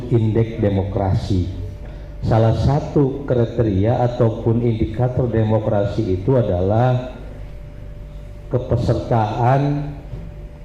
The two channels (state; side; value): identical; both; correlation 1.00